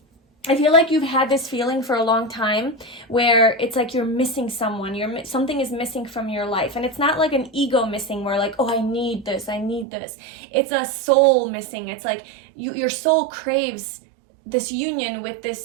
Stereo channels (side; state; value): left; drops out; at 9.9 s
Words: you've had this feeling for a long time where it's like you're missing someone. Something is missing from your life. And it's not like an ego missing where like, oh, I need this. It's a soul missing. It's like your soul craves this union with